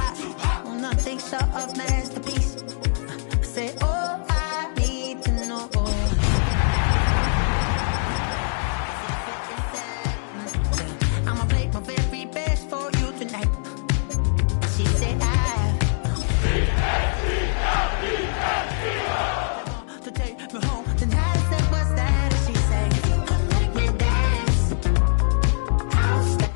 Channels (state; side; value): silent; right; digital silence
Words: well, nothing short of masterpiece. I said, oh, I need to know. I'ma play my very best for you tonight. She said, to take me home. Then I said, what's that? She said, make me dance. I'll stay.